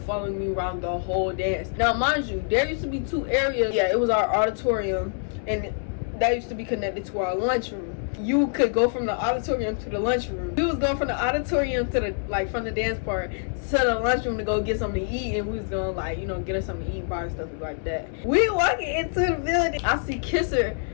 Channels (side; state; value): right; silent; 61 dB below the other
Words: me around the whole dance. Now, mind you, there used to be 2 areas. Yeah, it was our auditorium, and that used to be connected to our lunchroom. You could go from the auditorium to the lunchroom. We was going from the auditorium to the from the dance part to the lunchroom to go get something to eat, and we was gonna get us something to eat, bar and stuff like that. We walking into the building. I see Kisser,